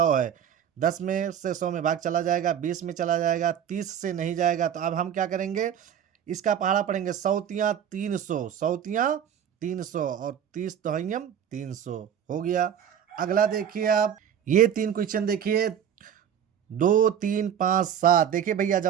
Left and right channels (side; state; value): left; quieter; 9.0 dB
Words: है। 10 में से 100 में भाग चला जाएगा, 20 में चला जाएगा, 30 से नहीं जाएगा। तो अब हम क्या करेंगे? इसका पहाड़ा पढ़ेंगे, 100 तियाँ 300, 100 तियाँ 300 और 30 दहइयम 300 हो गया। अगला देखिए आप, ये 3 क्वेश्चन देखिए, 2, 3, 5, 7। देखिए भैया